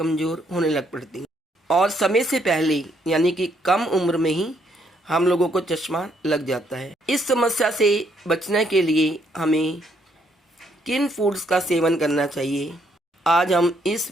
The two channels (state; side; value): normal; both; correlation 0.71